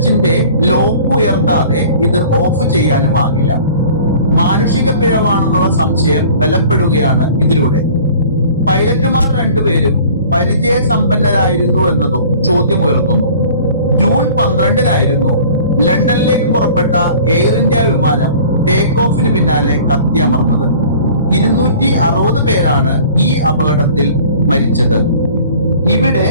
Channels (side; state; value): both; inverted; correlation -0.47